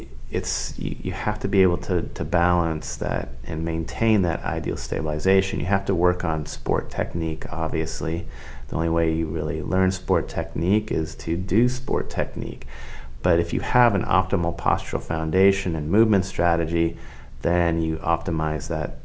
have to be able to balance that and maintain that ideal stabilization. You have to work on sport technique, obviously. The only way you really learn sport technique is to do sport technique. But if you have an optimal postural foundation and movement strategy, then you optimize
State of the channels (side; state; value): both; identical; correlation 1.00